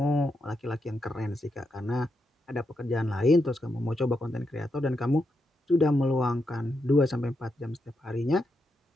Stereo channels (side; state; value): both; normal; correlation 0.83